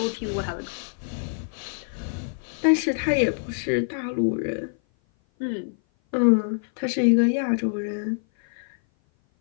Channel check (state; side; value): silent; right; 56 dB below the other